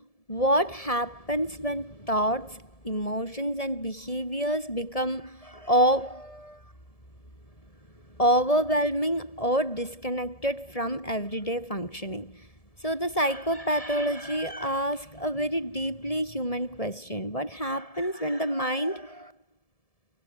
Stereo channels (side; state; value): right; late; 1.7 ms